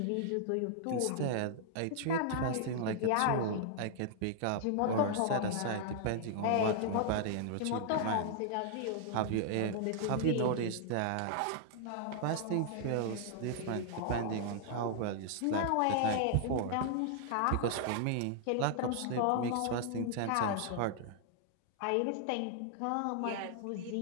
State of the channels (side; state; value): both; different; correlation 0.00